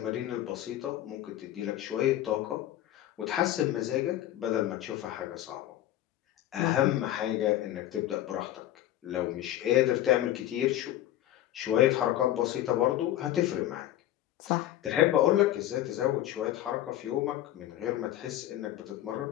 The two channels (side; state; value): right; quieter; 13.3 dB